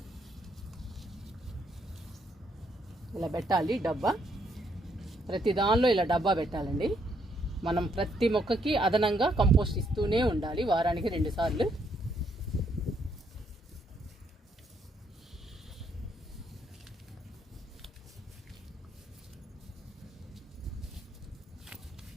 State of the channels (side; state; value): both; normal; correlation 0.73